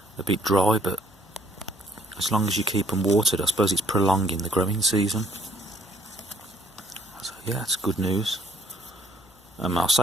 dry, but as long as you keep them watered, I suppose it's prolonging the growing season. yeah, it's good news. I'll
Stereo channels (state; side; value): normal; both; correlation 0.62